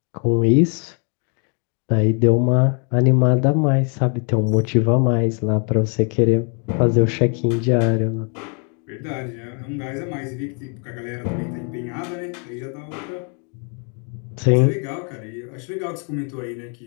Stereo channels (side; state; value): right; quieter; 39.2 dB